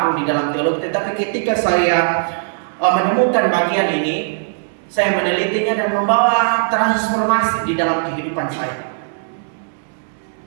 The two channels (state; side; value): silent; left; 67 dB below the other